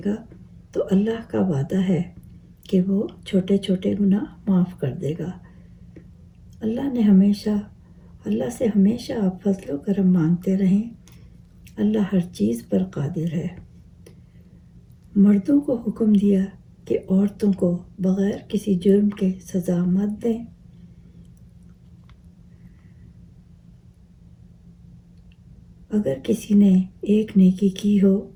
گا تو اللہ کا وعدہ ہے کہ وہ چھوٹے چھوٹے گناہ معاف کر دے گا۔ اللہ سے ہمیشہ آپ فضل و کرم مانگتے رہیں۔ اللہ ہر چیز پر قادر ہے۔ مردوں کو حکم دیا کہ عورتوں کو بغیر کسی جرم کے سزا مت دیں۔ اگر کسی نے ایک نیکی کی ہو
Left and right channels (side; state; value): both; identical; correlation 1.00